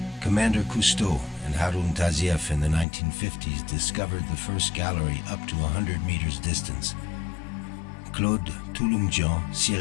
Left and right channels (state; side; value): drops out; right; at 2.9 s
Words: Commander Cousteau and Harun Tazieff in the 1950s discovered the first gallery up to 100 meters distance. Claude Touloumjian,